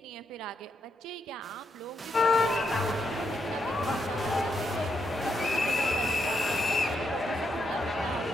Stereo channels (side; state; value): both; normal; correlation 0.80